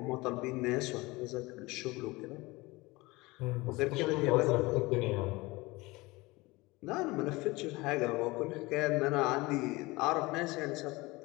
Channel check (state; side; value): quieter; right; 22.3 dB